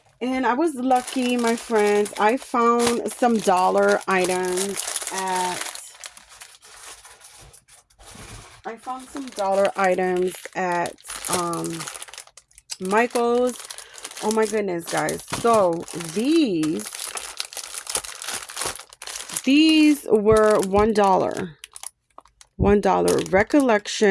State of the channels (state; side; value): identical; both; correlation 1.00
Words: And I was lucky, my friends. I found some dollar items at um Michael's. Oh my goodness, guys. So these were $1. $1